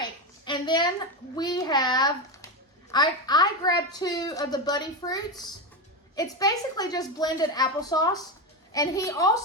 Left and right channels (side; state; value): both; normal; correlation 0.15